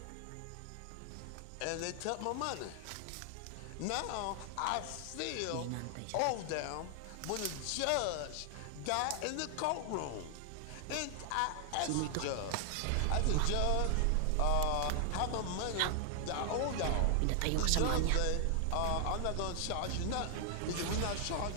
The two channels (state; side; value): different; both; correlation 0.00